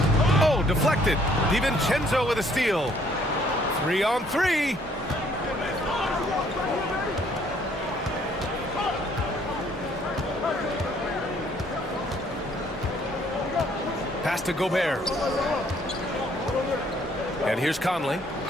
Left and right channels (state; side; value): normal; both; correlation 0.63